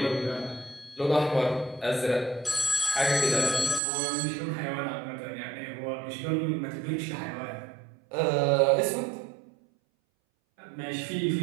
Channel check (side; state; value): left; drops out; at 3.8 s